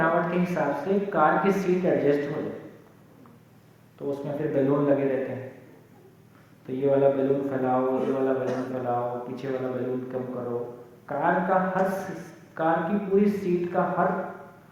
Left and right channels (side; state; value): both; identical; correlation 1.00